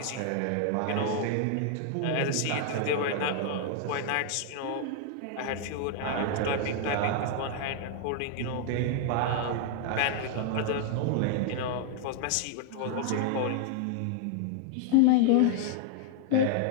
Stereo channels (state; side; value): different; both; correlation 0.00